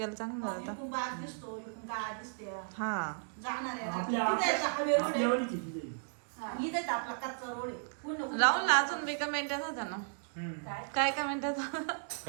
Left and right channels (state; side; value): silent; left; digital silence